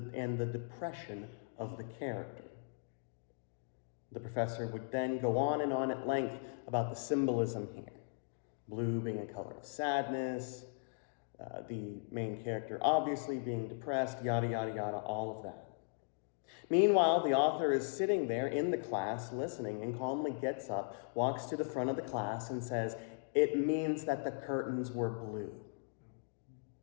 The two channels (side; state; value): right; silent; digital silence